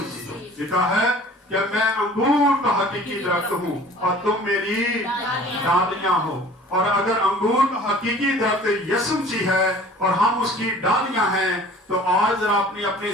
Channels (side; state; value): both; normal; correlation 0.47